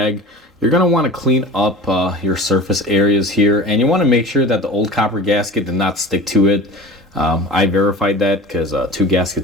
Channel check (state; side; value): normal; both; correlation 0.36